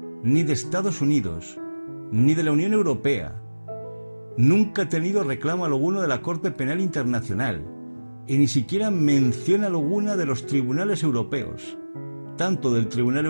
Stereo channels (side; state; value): both; inverted; correlation -1.00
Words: ni de Estados Unidos, ni de la Unión Europea. Nunca ha tenido reclamo alguno de la Corte Penal Internacional y ni siquiera mención alguna de los tribunales europeos, tanto del Tribunal